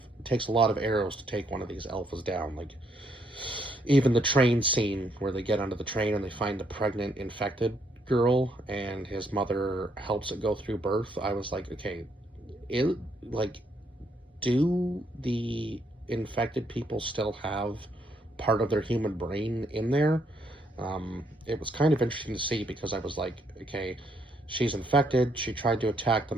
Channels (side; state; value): both; normal; correlation 0.72